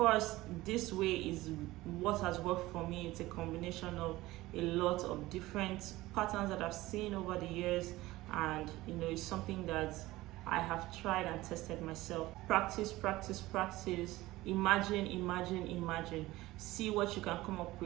this way is what has worked for me. It's a combination of a lot of different patterns that I've seen over the years, and it's something that I have tried and tested myself. Practice, practice, practice. Imagine, imagine, imagine. See what you can come up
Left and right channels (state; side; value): quieter; left; 18.1 dB